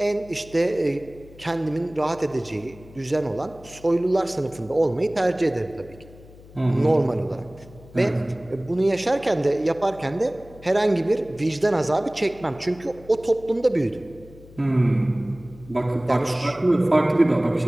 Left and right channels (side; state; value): left; noise; hum, 21 dB below the sound